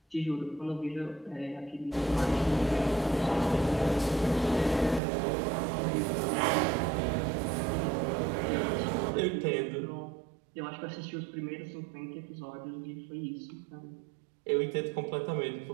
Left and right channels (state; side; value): drops out; left; at 5.0 s